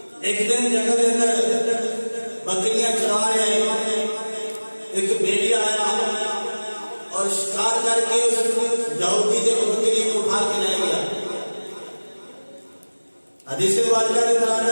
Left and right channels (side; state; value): both; inverted; correlation -1.00